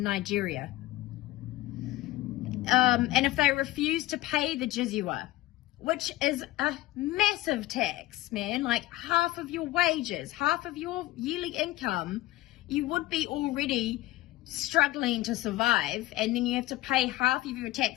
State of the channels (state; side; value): quieter; right; 17.0 dB